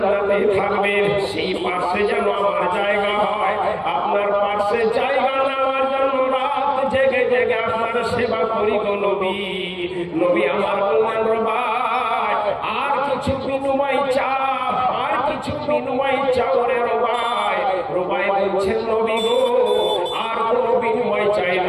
থাকবেন সেই পাশে যেন আমার জায়গা হয়। আপনার পাশে জায়গা নেওয়ার জন্য রাত জেগে জেগে আপনার সেবা করি গো নবী। নবী আমার বললেন, রুবাই আর কিছু বিনিময় চাও, আর কিছু বিনিময় চাও রে রুবাই। রুবাই বলছেন, নবী গো আর কোনো বিনিময় চাই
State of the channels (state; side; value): identical; both; correlation 1.00